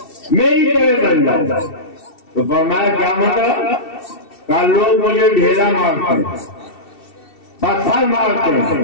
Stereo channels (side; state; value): right; late; 2.7 ms